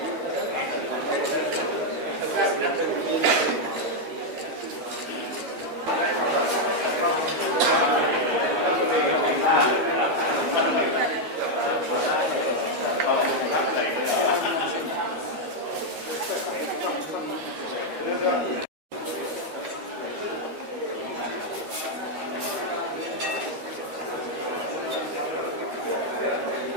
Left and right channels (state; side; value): late; left; 13 ms